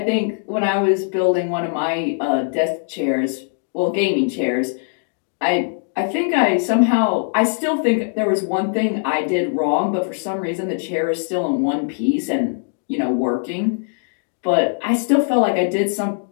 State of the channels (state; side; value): silent; right; digital silence